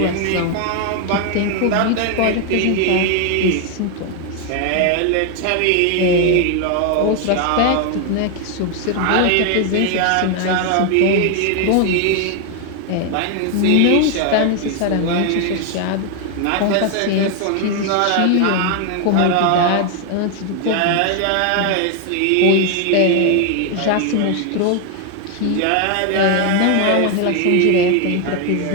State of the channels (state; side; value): different; both; correlation 0.01